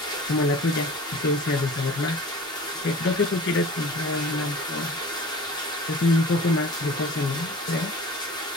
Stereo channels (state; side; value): normal; both; correlation 0.42